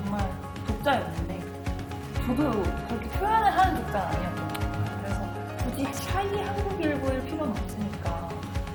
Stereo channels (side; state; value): both; identical; correlation 1.00